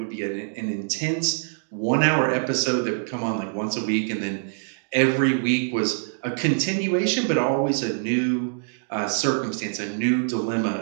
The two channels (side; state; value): left; silent; digital silence